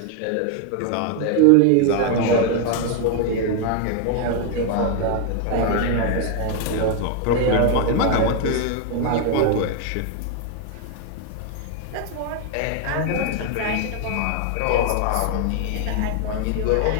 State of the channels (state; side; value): different; both; correlation 0.00